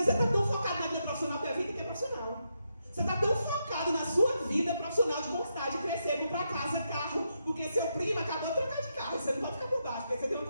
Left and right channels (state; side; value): inverted; both; correlation -0.82